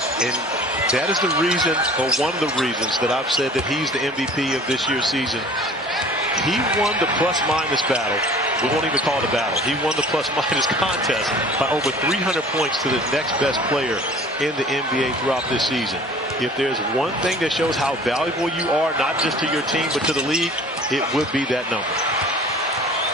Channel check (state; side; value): normal; both; correlation 0.47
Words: And that is the reason, or one of the reasons, that I've said that he's the MVP of this year's season. He won the plus-minus battle. We won't even call it a battle. He won the plus-minus contest by over 300 points to the next best player in the NBA throughout this season. If there's one thing that shows how valuable you are, not just to your team, but to the league, it would be that number.